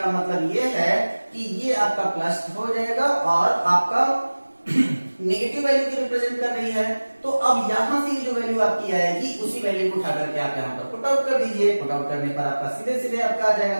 मतलब ये है कि ये आपका प्लस हो जाएगा और आपका नेगेटिव वैल्यू की रिप्रेजेंट कर रही है। तो अब यहां से जो वैल्यू आपकी आएगी उसी वैल्यू को उठा करके आप यहां पर पुट आउट कर दीजिए। पुट आउट करने पर आपका सीधे सीधे आपका आ जाएगा,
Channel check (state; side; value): inverted; both; correlation -1.00